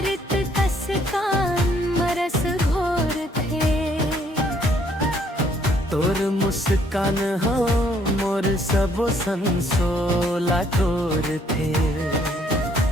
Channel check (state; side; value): normal; both; correlation 0.66